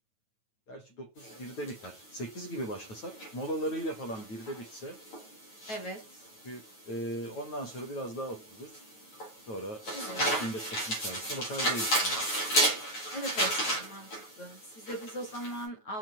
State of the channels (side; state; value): right; late; 9.2 ms